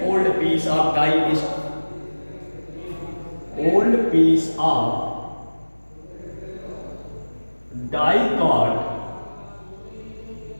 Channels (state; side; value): inverted; both; correlation -1.00